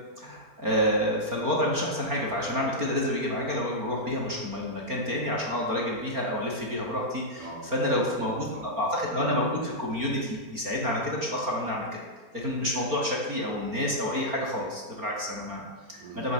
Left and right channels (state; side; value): late; left; 4.4 ms